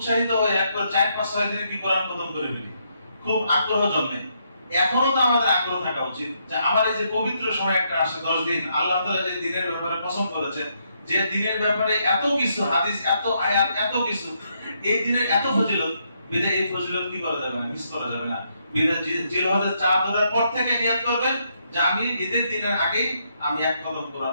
হয়ে একবার 4-5-6 দিনে কি কোরআন খতম করে ফেলি, খুব আগ্রহ জন্মে। এখনো তো আমাদের আগ্রহ থাকা উচিত যে আমার এই যে পবিত্র সময় একটা আসে 10 দিন, আল্লাহ তাআলা যে দিনের ব্যাপারে পছন্দ করেছেন, যে দিনের ব্যাপারে এত কিছু হাদিস, এত আয়াত, এত কিছু, এই দিনের এত ফজিলত, বিদায় এই ফজিলত কি করা যাবে না, মিস করা যাবে না। বিদায় জিলহজের চাঁদ ওঠার পর থেকে নিয়ত করবেন যে আমি ঈদের দিনের আগেই আমি 1 কদম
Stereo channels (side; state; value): both; inverted; correlation -0.76